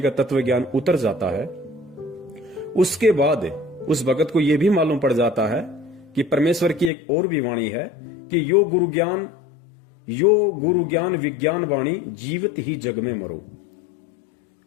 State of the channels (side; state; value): right; drops out; at 6.9 s